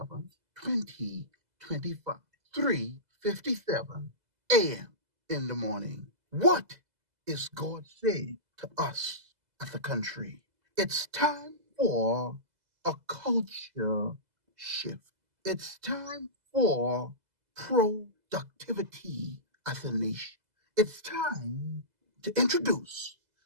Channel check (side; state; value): left; late; 2.0 ms